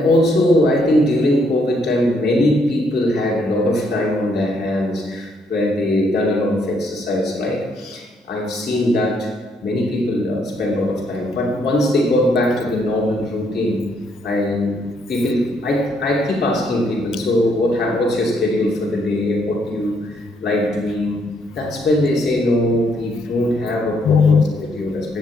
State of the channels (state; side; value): normal; both; correlation 0.72